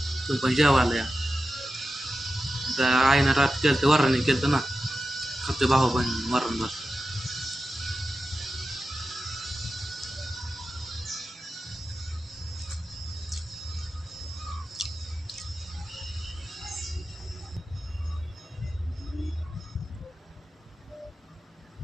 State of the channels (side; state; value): both; normal; correlation 0.92